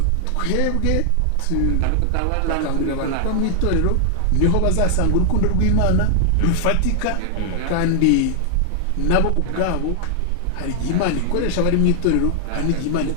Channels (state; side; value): different; both; correlation -0.01